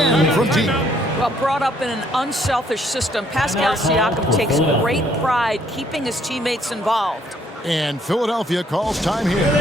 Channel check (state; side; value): normal; both; correlation 0.66